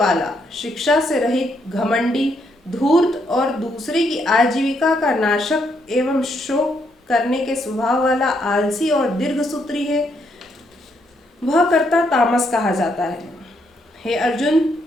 शिक्षा से रहित, घमंडी, धूर्त और दूसरे की आजीविका का नाशक एवं शोक करने के स्वभाव वाला आलसी और दीर्घसूत्री है, वह कर्ता तामस कहा जाता है। हे अर्जुन,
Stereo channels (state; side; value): normal; both; correlation 0.75